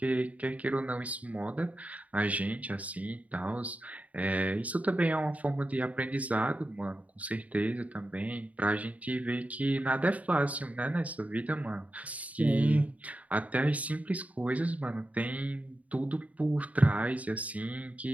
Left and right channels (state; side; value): late; left; 0.070 ms